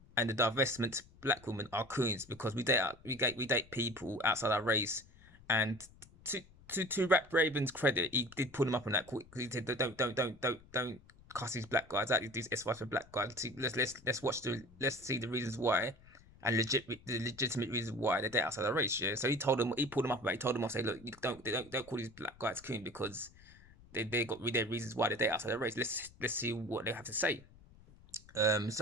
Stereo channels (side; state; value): left; noise; rumble, 24 dB below the sound